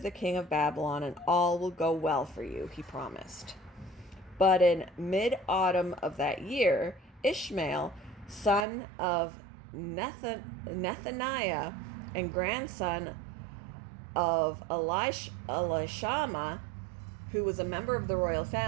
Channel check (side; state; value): left; drops out; at 8.7 s